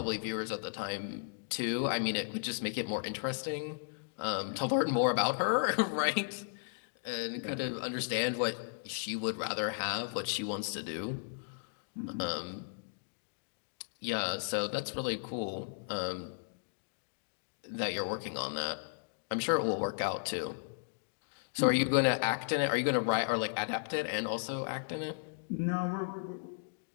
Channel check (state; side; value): silent; right; digital silence